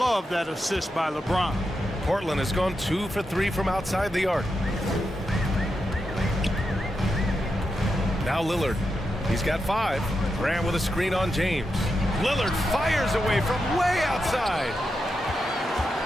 that assist by LeBron. Portland has gone 2 for 3 from outside the arc. Now Lillard. He's got 5. Grant with a screen on James. Lillard fires away from way outside.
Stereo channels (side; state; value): both; normal; correlation 0.87